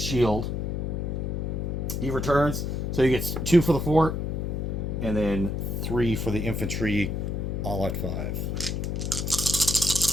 He returns. So he gets 2 for the fort. And then 3 for the infantry, all at 5.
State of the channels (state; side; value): noise; left; hum, 1 dB below the sound